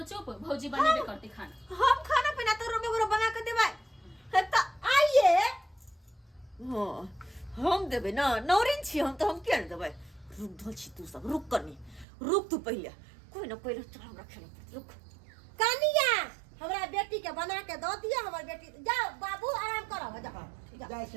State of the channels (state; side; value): drops out; left; at 12.1 s